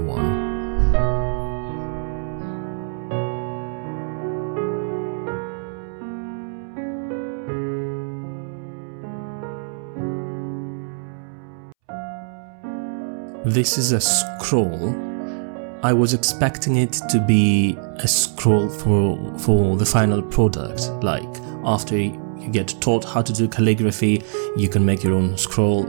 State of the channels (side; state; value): left; silent; 64 dB below the other